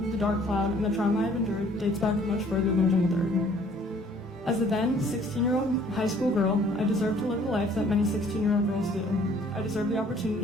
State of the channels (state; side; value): normal; both; correlation 0.58